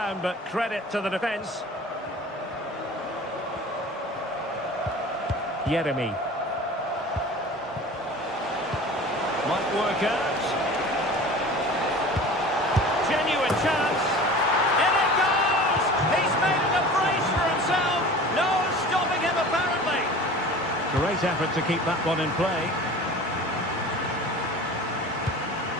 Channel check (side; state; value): both; normal; correlation 0.39